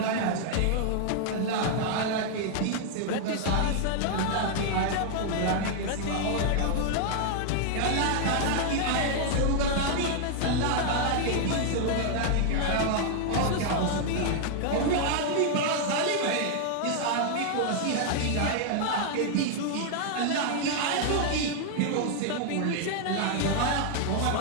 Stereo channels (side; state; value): both; different; correlation 0.00